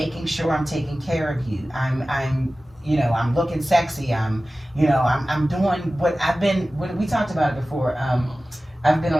sure I'm taking care of you. I'm I'm looking sexy. I'm doing what we talked about it before. I've been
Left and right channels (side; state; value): both; normal; correlation 0.96